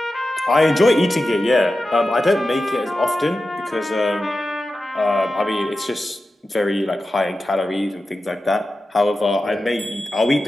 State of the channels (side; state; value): both; normal; correlation 0.93